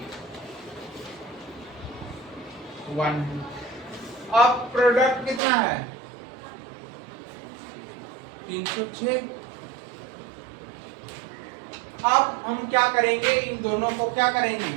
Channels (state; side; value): drops out; left; at 5.4 s